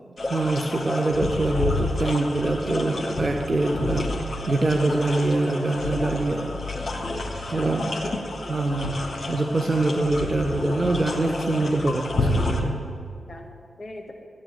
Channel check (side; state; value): both; normal; correlation 0.88